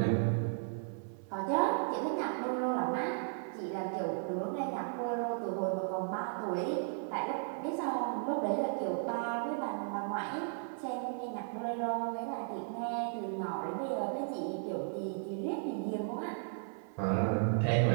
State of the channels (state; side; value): silent; left; 54 dB below the other